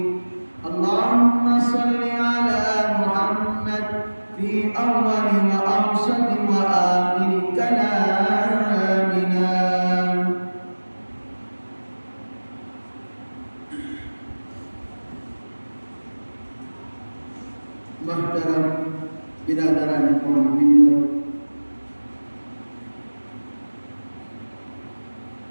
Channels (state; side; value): inverted; both; correlation -1.00